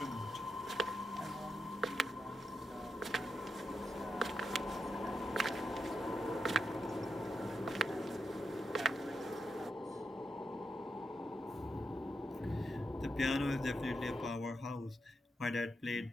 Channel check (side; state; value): both; normal; correlation 0.86